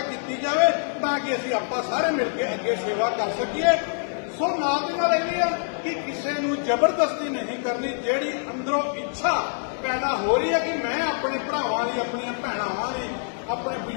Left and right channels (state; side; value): silent; right; 62 dB below the other